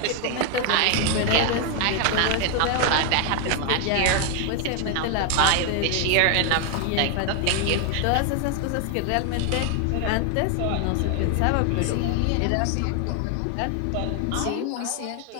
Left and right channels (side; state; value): both; different; correlation 0.00